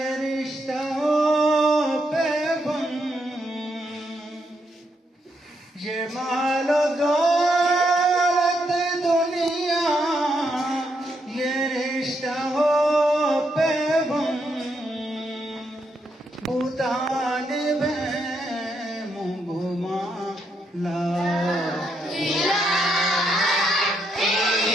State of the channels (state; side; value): normal; both; correlation 0.79